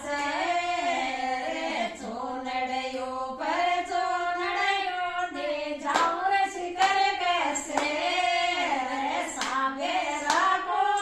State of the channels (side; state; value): both; identical; correlation 1.00